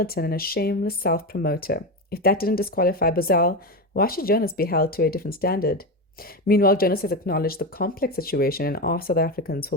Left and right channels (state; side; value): normal; both; correlation 0.17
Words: and a shameless self-promoter. If that didn't disqualify Bozell, why should Jonas be held to a different standard? Meanwhile, Jonas has acknowledged the complex situation and asked South Africans